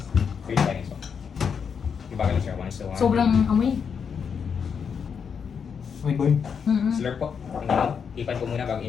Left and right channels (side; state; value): right; quieter; 6.7 dB